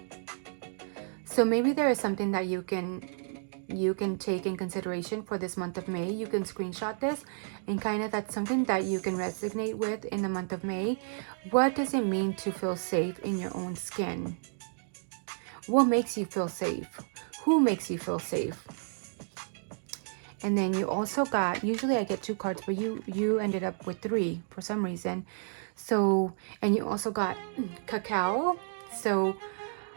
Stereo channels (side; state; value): left; silent; digital silence